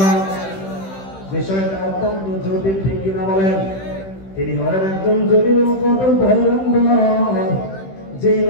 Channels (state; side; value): late; right; 16 ms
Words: বিষয়টা অত্যন্ত জটিল, ঠিক কিনা বলেন? তিনি হলেন একজন জলিল কদর পয়গম্বর, যে